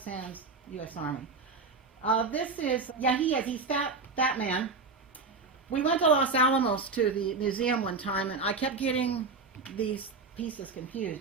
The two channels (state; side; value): quieter; left; 4.2 dB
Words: Sands U.S. Army. This is, yeah, he's that man. We went to Los Alamos to the museum one time, and I kept getting these pieces